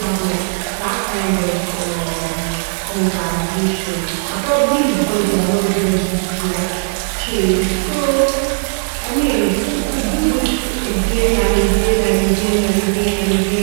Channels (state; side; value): silent; left; 56 dB below the other